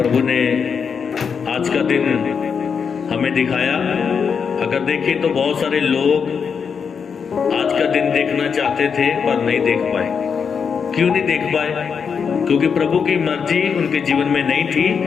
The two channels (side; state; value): right; quieter; 6.3 dB